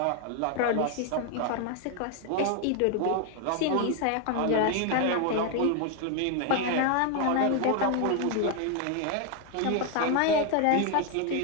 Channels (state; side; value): different; both; correlation 0.01